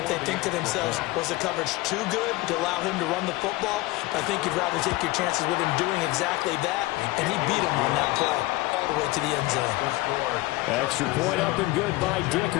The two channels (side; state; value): right; quieter; 20.2 dB